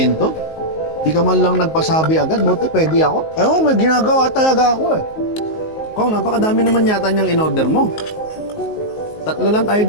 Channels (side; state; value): right; late; 19 ms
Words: Di ka man lang nagpasabi agad, buti pwede ako. Ewan, may ginagawa talaga ako eh. Kung napakadami naman yata niyang in-order mo. 3 lang tayo